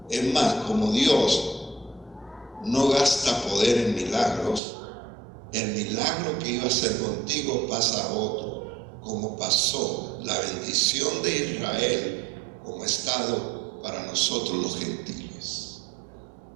Es más, como Dios no gasta poder en milagros, el milagro que iba a hacer contigo pasa a otro, como pasó la bendición de Israel como estado para nosotros los gentiles.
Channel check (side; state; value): left; drops out; at 4.6 s